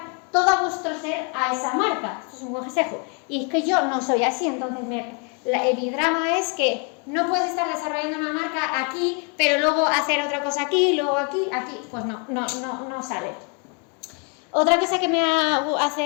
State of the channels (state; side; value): quieter; right; 36.1 dB